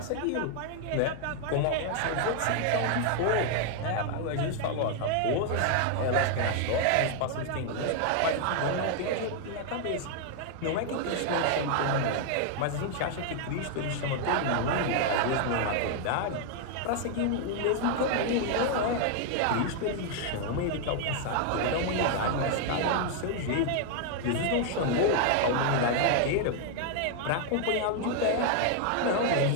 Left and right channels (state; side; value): different; both; correlation 0.00